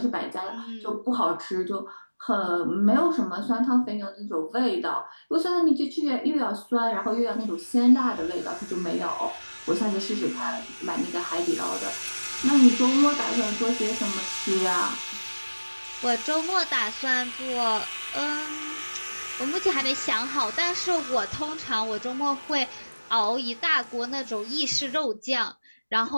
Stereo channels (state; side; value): inverted; both; correlation -1.00